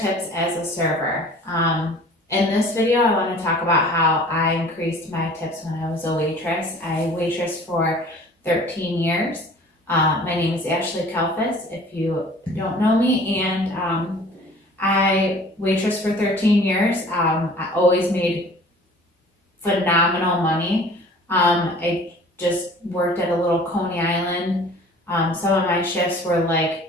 as a server. In this video, I want to talk about how I increased my tips when I was a waitress. I waitressed for 13 years. My name is Ashley Kalfas, if you don't know me, and I waitressed for 13 years. I always made phenomenal money. I just worked at a little Coney Island. Some of my shifts were like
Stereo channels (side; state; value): both; normal; correlation 0.47